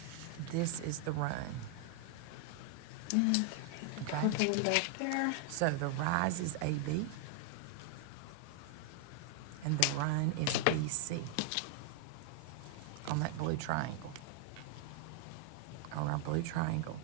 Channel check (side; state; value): both; different; correlation 0.00